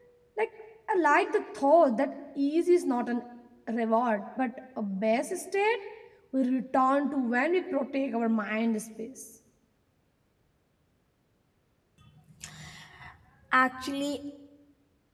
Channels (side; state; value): both; identical; correlation 1.00